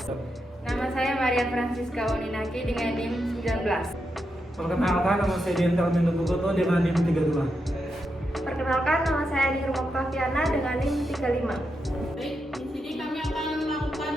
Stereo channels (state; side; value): normal; both; correlation 0.85